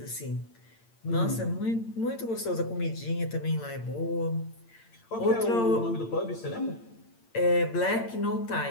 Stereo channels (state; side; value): late; right; 8.8 ms